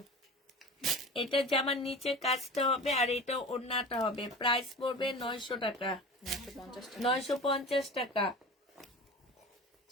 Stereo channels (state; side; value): normal; both; correlation 0.35